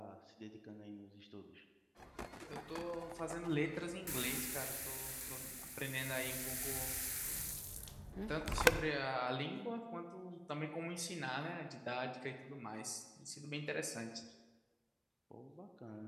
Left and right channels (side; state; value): both; identical; correlation 1.00